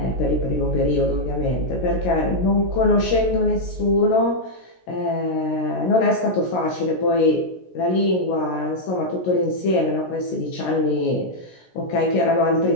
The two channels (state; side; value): late; right; 16 ms